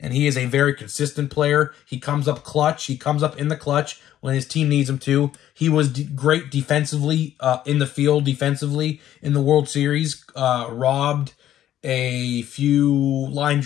and he is a very consistent player. He comes up clutch. He comes up in the clutch when his team needs him to. He was great defensively, in the field defensively in the World Series. Robbed a few line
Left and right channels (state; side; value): quieter; right; 12.0 dB